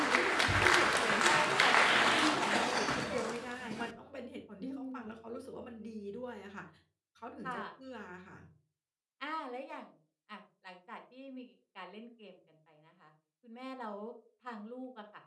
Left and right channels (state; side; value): identical; both; correlation 1.00